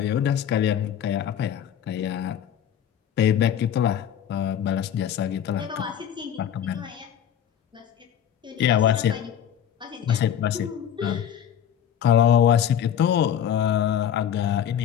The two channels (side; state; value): right; quieter; 9.5 dB